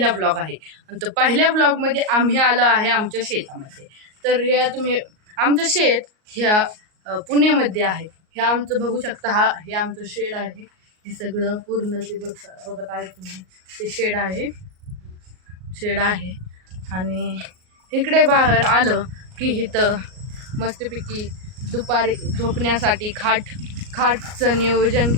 ब्लॉग आहे आणि तो पहिल्या ब्लॉगमध्ये आम्ही आलो आहे आमच्या शेतामध्ये. तर हे तुम्ही आमचं शेत ह्या पुण्यामध्ये आहे. हे आमचं बघू शकता, हे आमचं शेड आहे. हे सगळं पूर्ण ते बघत आहे तुम्ही, ते शेड आहे आणि इकडे बाहेर आलं की इथं मस्तपैकी दुपारी झोपण्यासाठी खाटचं नियोजन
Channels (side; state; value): left; late; 38 ms